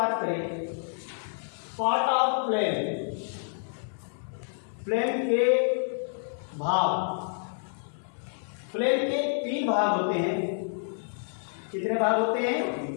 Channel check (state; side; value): silent; right; digital silence